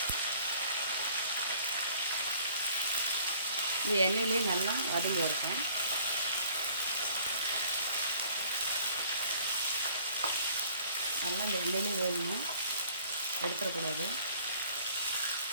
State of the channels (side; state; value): both; inverted; correlation -0.55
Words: இந்த எண்ணெயிலே நல்லா வதங்கி இருக்கும். நல்லா இந்த எண்ணெயிலே வேகணும், எடுத்துடக்கூடாது.